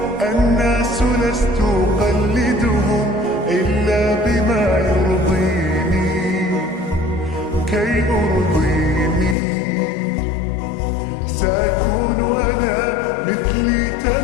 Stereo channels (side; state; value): right; drops out; at 9.3 s